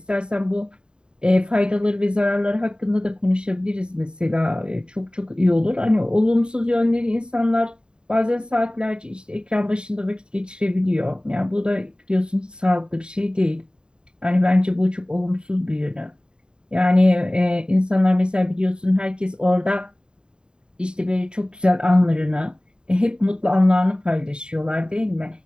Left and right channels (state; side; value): late; left; 0.049 ms